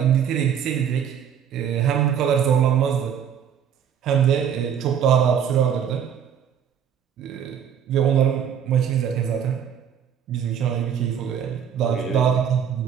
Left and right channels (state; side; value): quieter; left; 8.4 dB